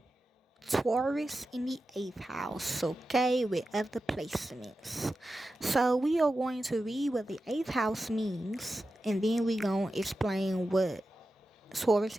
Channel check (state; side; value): normal; both; correlation 0.92